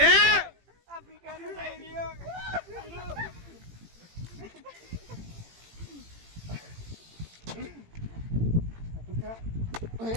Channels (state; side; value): late; left; 18 ms